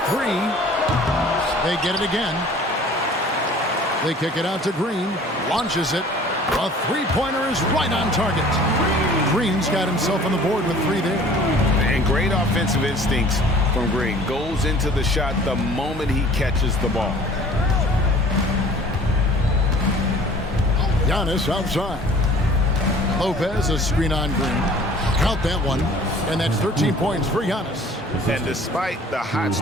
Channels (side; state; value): both; normal; correlation 0.49